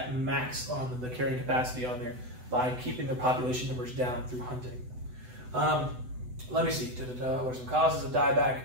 max on the carrying capacity on there by keeping the population numbers down through hunting. Let me see. What are some causes of dieback?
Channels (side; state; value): left; late; 8.0 ms